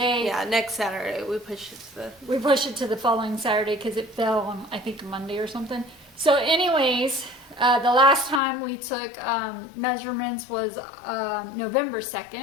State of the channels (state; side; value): drops out; right; at 8.4 s